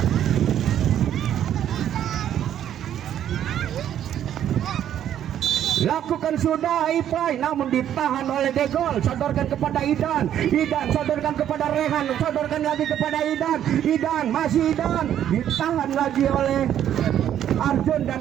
Lakukan sudah Ipai, namun ditahan oleh Degol. Sodorkan kepada Idan, Idan sodorkan kepada Rehan, sodorkan lagi kepada Idan, Idan masih Idan, ditahan lagi oleh Arjun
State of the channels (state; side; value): quieter; left; 10.5 dB